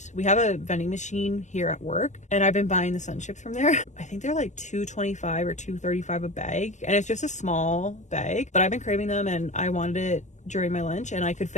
we have a vending machine here at work, and I've been buying the sun chips from there. I think they're like $2.25 or $2.35 a bag, and it's just a small bag, but I've been craving them and I wanted it during my lunch and I could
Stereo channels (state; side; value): late; right; 0.34 ms